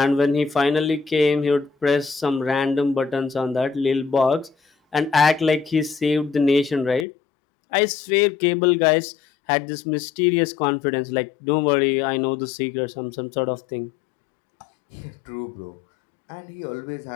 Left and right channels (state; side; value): drops out; right; at 7.1 s